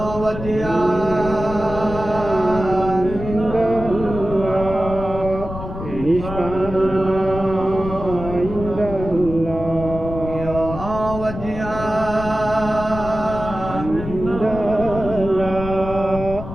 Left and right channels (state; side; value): noise; left; rumble, 9 dB below the sound